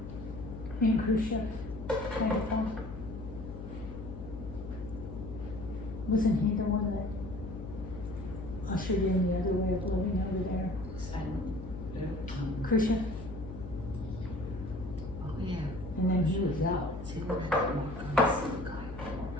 And Khrushchev. Wasn't he the one that ushered in the other way of living over there? Khrushchev? Oh, yeah. And then he was out. See, what happened on some guy.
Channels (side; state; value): left; noise; hum, 10 dB below the sound